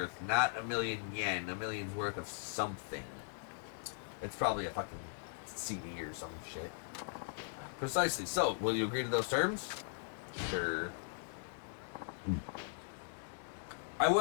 not 1,000,000 yen. $1 million's worth of something. It's probably a fucking CD or some shit. Precisely. So, will you agree to those terms? Sure. I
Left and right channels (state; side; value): silent; right; digital silence